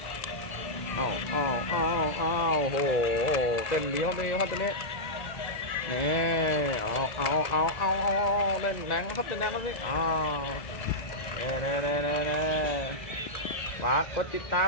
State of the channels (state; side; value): late; right; 2.0 ms